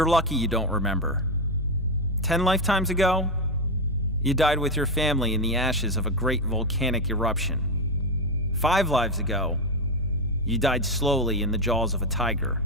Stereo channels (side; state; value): both; normal; correlation 0.09